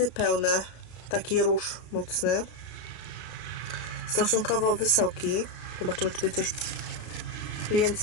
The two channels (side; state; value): right; late; 33 ms